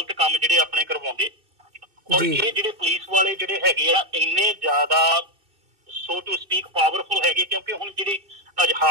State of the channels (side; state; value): left; late; 2.6 ms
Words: ਕੰਮ ਜਿਹੜੇ ਆਪਣੇ ਕਰਵਾਉਂਦੇ। ਔਰ ਇਹ ਜਿਹੜੇ ਪੁਲਿਸ ਵਾਲੇ ਜਿਹੜੇ ਹੈਗੇ ਆ ਇੰਨੇ ਜ਼ਿਆਦਾ ਸੋ ਟੂ ਸਪੀਕ ਪਾਵਰਫੁਲ ਹੈਗੇ, ਕਿਉਂਕਿ ਹੁਣ ਜਿਹੜੀ